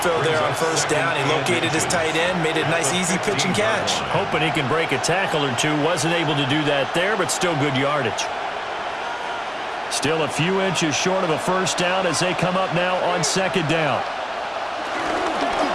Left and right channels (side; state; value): both; identical; correlation 1.00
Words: fill there on 1st down. He located his tight end, made it a nice, easy pitch and catch. Hoping he can break a tackle or two. Wasn't able to do that there, but still good yardage. Still a few inches short of a 1st down as they come up now on 2nd down.